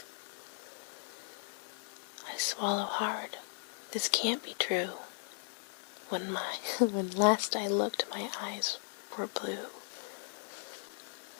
I swallow hard. This can't be true. When last I looked, my eyes were blue.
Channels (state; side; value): silent; right; 53 dB below the other